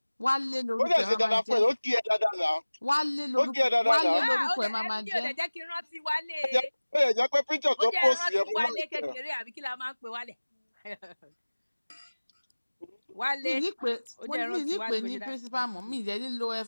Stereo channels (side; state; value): both; inverted; correlation -1.00